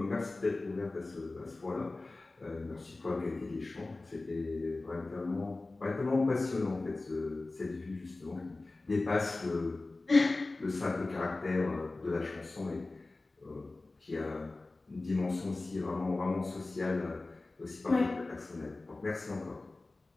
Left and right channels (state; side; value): quieter; right; 3.2 dB